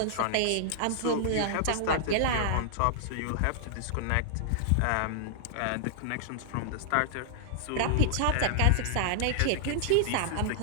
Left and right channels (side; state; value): both; different; correlation -0.01